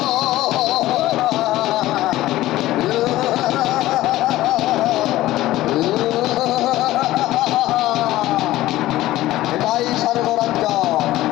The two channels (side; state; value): right; quieter; 15.9 dB